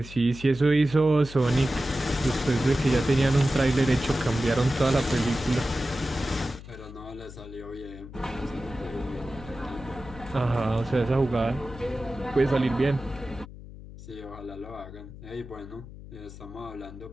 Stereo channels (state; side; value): noise; left; hum, 15 dB below the sound